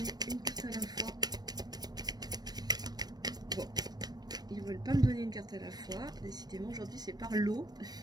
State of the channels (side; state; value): left; late; 0.19 ms